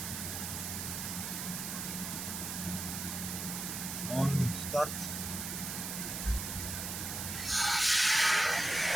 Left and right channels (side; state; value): right; noise; hiss, 4 dB below the sound